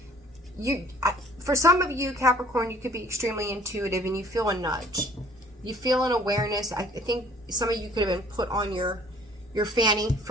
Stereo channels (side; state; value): both; normal; correlation 0.55